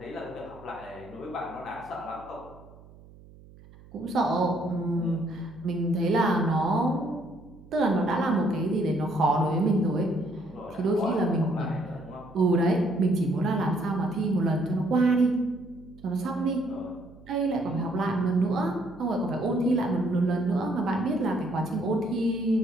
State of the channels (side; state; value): right; noise; hum, 22 dB below the sound